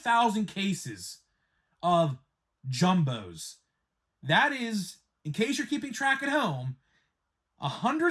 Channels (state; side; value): identical; both; correlation 1.00